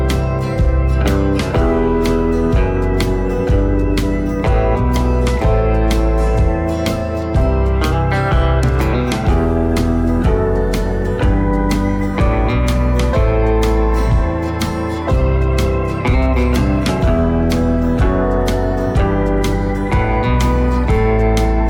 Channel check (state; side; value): identical; both; correlation 1.00